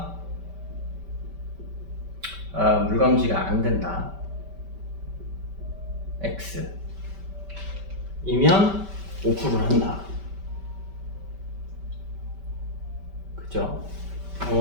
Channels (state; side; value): late; left; 5.2 ms